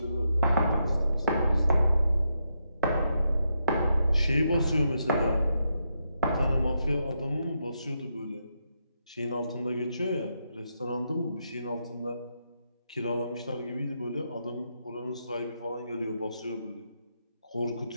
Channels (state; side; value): inverted; both; correlation -0.82